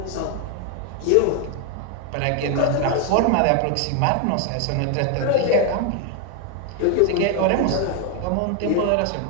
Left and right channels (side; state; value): both; different; correlation 0.01